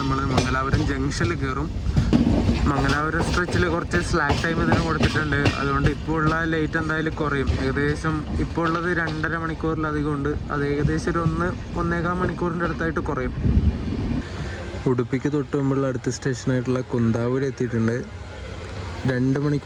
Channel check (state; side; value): identical; both; correlation 1.00